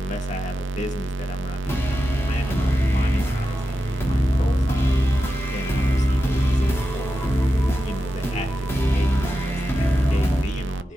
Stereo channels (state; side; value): normal; both; correlation 0.90